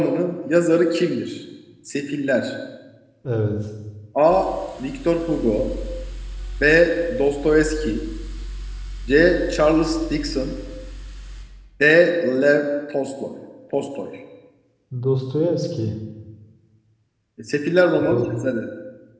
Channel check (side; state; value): both; identical; correlation 1.00